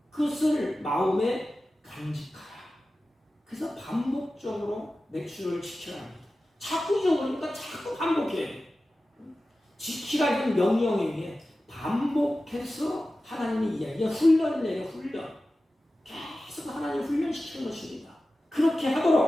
그것을 마음에 간직하라. 그래서 반복적으로 맥주를 지켜야 합니다. 자꾸 잊어버리니까 자꾸 반복해야 돼요. 지키라는 명령에 의해 반복해서 하나님의 이야기가 훈련을 내려 훈련. 계속 하나님 훈련시키는 것입니다. 그렇게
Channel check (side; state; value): both; normal; correlation 0.95